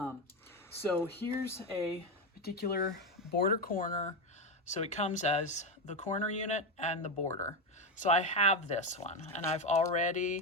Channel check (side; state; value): both; normal; correlation 0.11